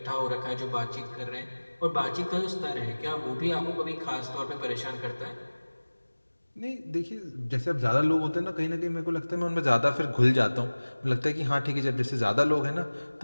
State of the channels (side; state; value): both; inverted; correlation -1.00